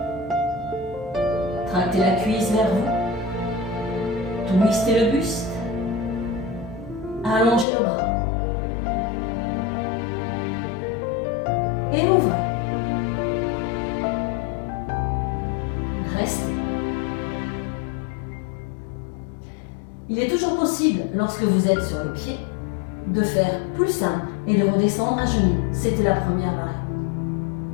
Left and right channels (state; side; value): drops out; right; at 7.7 s